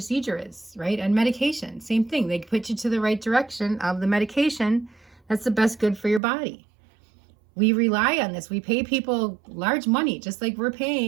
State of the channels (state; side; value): drops out; left; at 6.2 s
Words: is, right? And medication, same thing. They put you to the right direction of the medication that's the best good for your body. We rely on this. We pay people large money, just like we're